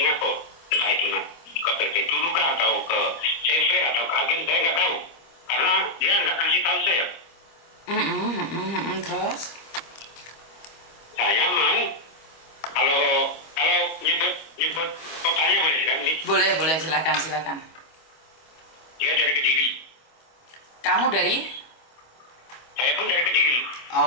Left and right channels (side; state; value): right; late; 25 ms